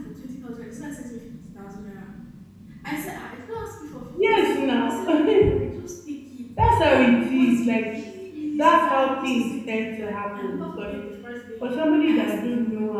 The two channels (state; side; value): identical; both; correlation 1.00